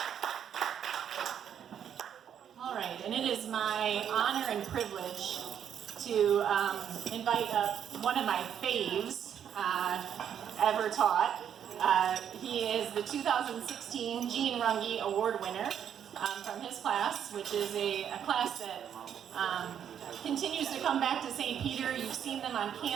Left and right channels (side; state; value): left; quieter; 8.9 dB